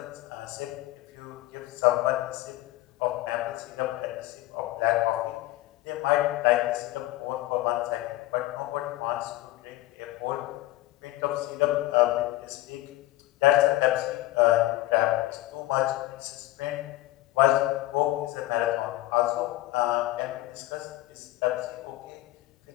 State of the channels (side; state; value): right; quieter; 16.7 dB